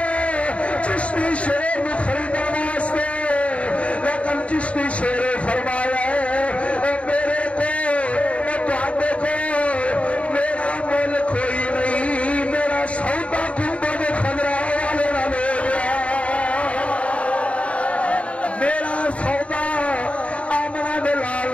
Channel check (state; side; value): late; right; 0.064 ms